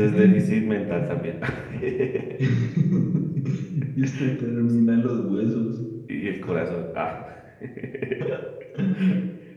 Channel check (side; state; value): both; identical; correlation 1.00